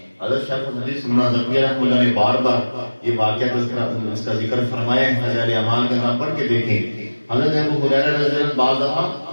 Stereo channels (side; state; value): both; inverted; correlation -1.00